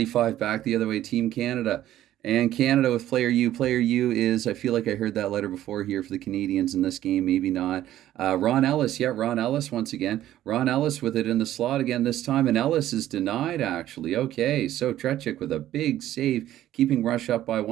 back the other way, Team Canada. And Canada with player U. Player U is, I feel like I heard that letter before here for the Canadians in this game, maybe not. Ron Ellis, Ron Ellis once again. Ron Ellis with it in the slot again this time, and Ellis is denied actually. Okay, so Trechik with a big save, keeping Rush up by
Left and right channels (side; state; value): left; quieter; 13.1 dB